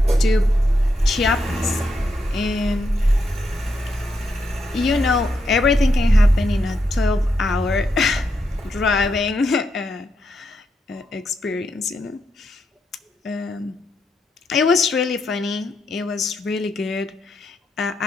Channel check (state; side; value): normal; both; correlation 0.82